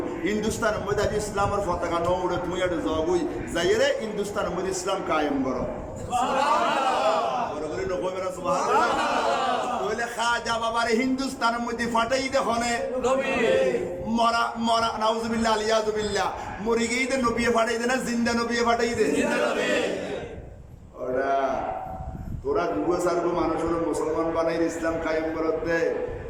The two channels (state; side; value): identical; both; correlation 1.00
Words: হিন্দুস্তানের মধ্যে আজ ইসলামের পতাকা ন উড়ে তুমি এটা জবই যাইরে হিন্দুস্তানের মধ্যে ইসলাম কায়েম করো বড় করে নকবে না সুবহানাল্লাহ তাহলে খাজা বাবারে হিন্দুস্তানের মধ্যে ফাটাই দেখনে নবী মরা মরা নাউজুবিল্লাহ আলিয়াজুবিল্লাহ মরি গেই দে নবী ফাটাই দে না জিন্দা নবী ফাটাই দে জিন্দা নবী ওরা তোরা দুগো সারগো মানুষ হলো মুসলমান বানাই ইসলাম কায়েম করতে